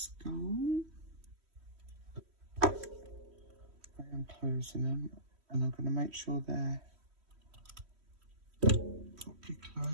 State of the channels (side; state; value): left; late; 3.1 ms